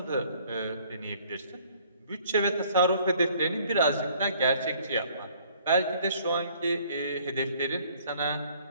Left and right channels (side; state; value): both; inverted; correlation -0.59